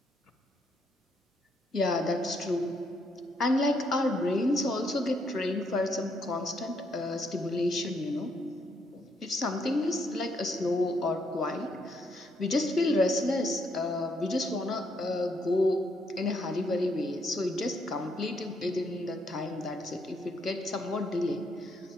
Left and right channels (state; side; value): normal; both; correlation 0.74